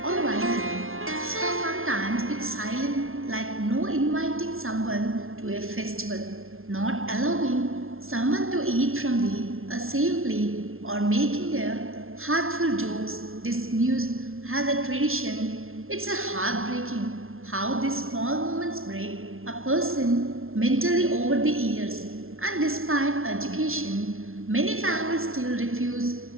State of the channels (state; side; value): late; left; 0.61 ms